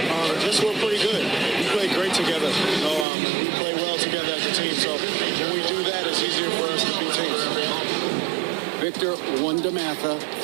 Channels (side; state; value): left; drops out; at 3.1 s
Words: Just we're pretty good. We play great together. We play well together as a team. So when we do that, it's easier for us to beat teams. Victor Wondermatha,